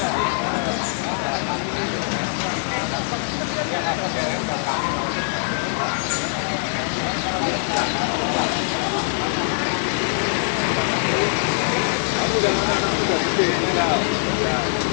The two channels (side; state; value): right; silent; digital silence